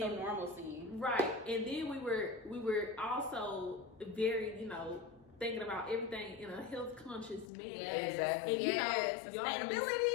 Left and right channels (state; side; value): drops out; right; at 7.5 s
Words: some normalcy. Right. And then we were also very, you know, thinking about everything in a health conscious manner. Exactly. And you know, y'all have been